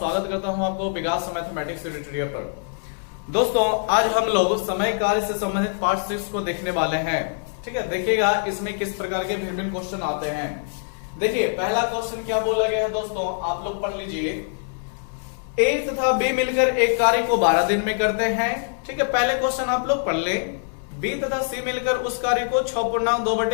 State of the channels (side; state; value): right; silent; digital silence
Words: करता हूं आपको विकास मैथमेटिक्स ट्यूटोरियल पर। दोस्तों, आज हम लोग समय कार्य से संबंधित पार्ट 6 को देखने वाले हैं। ठीक है, देखिएगा इसमें किस प्रकार के भिन्न क्वेश्चन आते हैं। देखिए, पहला क्वेश्चन क्या बोला गया है दोस्तों, आप लोग पढ़ लीजिए। ए तथा बी मिलकर एक कार्य को 12 दिन में करते हैं। ठीक है, पहले क्वेश्चन आप लोग पढ़ ले। बी तथा सी मिलकर उस कार्य को